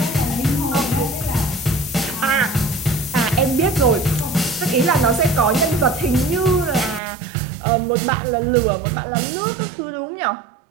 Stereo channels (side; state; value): left; drops out; at 7.0 s